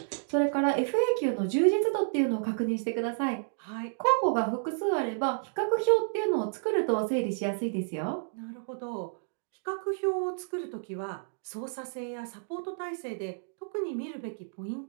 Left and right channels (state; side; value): silent; left; digital silence